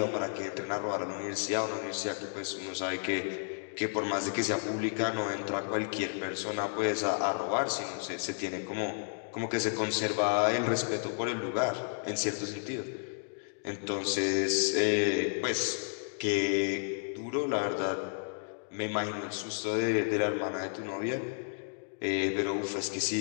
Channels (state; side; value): silent; right; digital silence